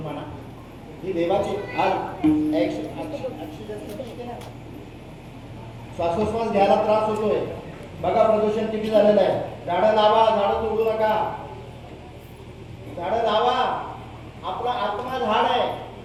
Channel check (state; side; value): identical; both; correlation 1.00